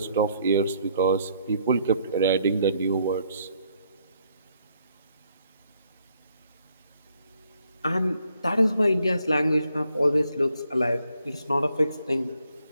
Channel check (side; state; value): both; inverted; correlation -0.70